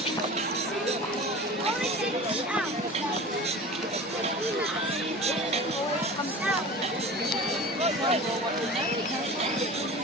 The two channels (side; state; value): both; normal; correlation 0.36